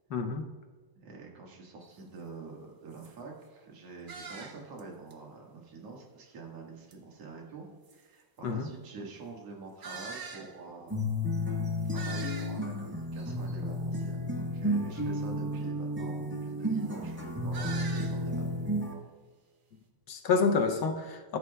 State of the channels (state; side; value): late; left; 1.0 ms